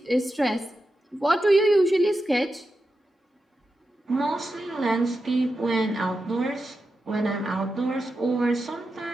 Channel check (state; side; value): normal; both; correlation 0.89